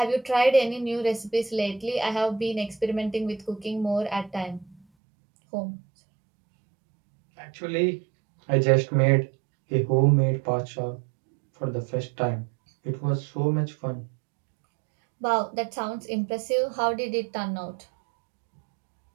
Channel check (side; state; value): left; drops out; at 4.8 s